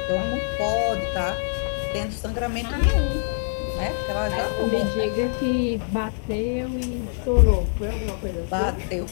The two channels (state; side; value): silent; right; 62 dB below the other